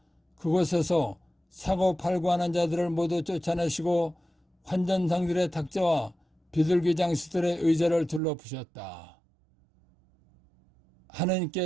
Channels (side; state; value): left; drops out; at 8.2 s